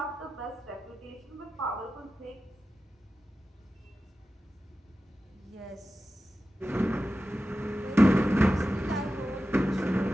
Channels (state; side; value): normal; both; correlation 0.93